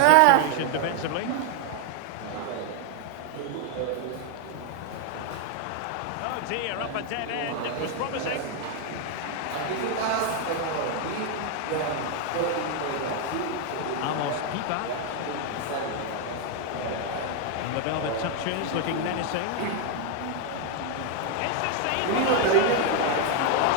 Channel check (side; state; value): both; different; correlation 0.00